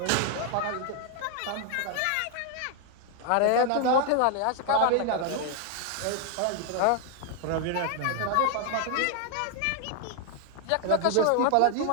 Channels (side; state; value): both; different; correlation 0.00